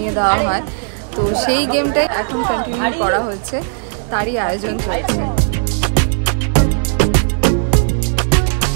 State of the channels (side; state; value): left; silent; digital silence